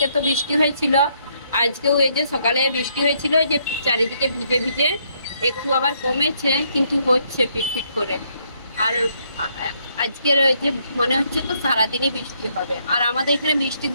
তো বৃষ্টি হয়েছিল আজকেও এই যে সকালে বৃষ্টি হয়েছিল যে চারিদিকে ভিজে ভিজে একটু আবার কমেছে কিন্তু হচ্ছে পিটপিট করে আর আজকের ওই যে মনে হচ্ছে তো সারাদিনই বৃষ্টি হবে আর আমাদের এখানে বৃষ্টি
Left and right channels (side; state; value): both; inverted; correlation -0.71